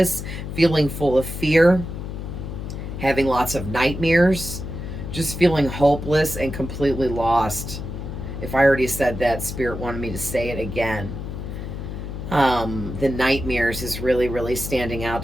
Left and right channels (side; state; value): left; noise; hum, 7 dB below the sound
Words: feeling full of fear, having lots of nightmares, just feeling hopeless and completely lost. If I already said that, Spirit wanted me to say it again. The nightmares is really, really standing out